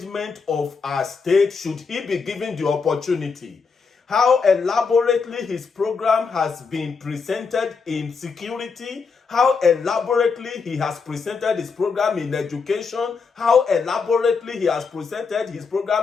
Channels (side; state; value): right; quieter; 5.1 dB